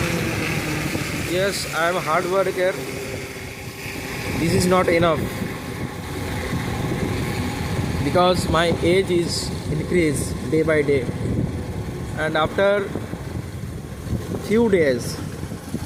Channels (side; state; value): both; identical; correlation 1.00